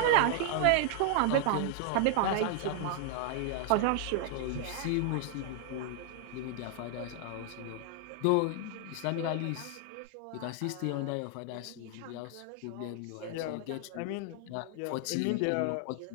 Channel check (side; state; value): both; different; correlation 0.00